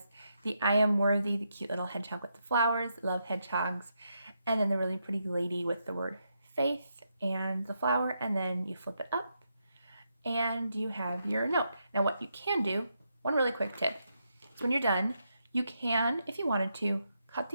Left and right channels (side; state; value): both; inverted; correlation -0.82